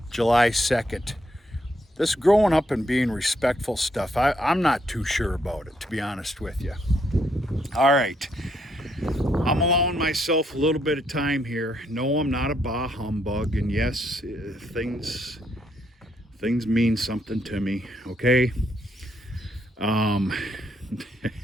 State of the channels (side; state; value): both; normal; correlation 0.74